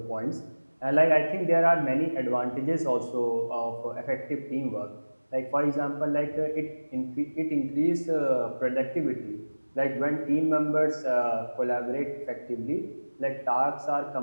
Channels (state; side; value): inverted; both; correlation -1.00